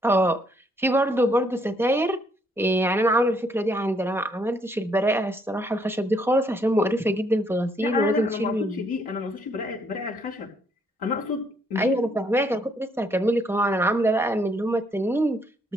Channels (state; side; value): normal; both; correlation 0.70